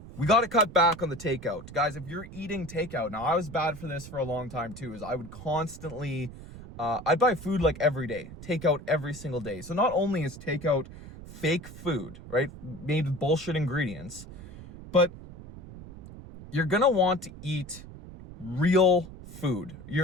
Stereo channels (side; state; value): right; noise; rumble, 15 dB below the sound